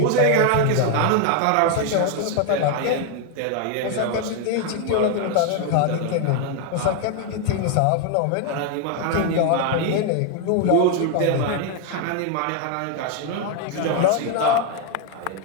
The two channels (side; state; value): both; different; correlation 0.01